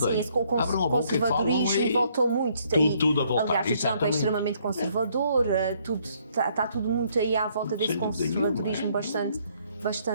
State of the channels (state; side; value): inverted; both; correlation -0.67